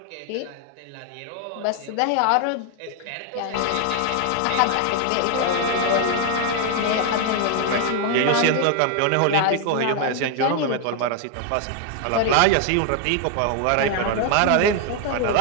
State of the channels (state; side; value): different; both; correlation 0.00